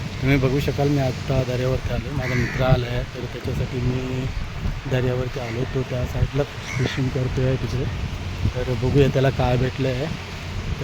तुम्ही बघू शकाल मी आत्ता दर्यावरती आलो. माझा मित्र आला आहे, तर त्याच्यासाठी मी दर्यावरती आलो. तो त्या साईडला फिशिंग करतो आहे तिकडे. तर बघूया त्याला काय भेटलं आहे,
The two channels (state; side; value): identical; both; correlation 1.00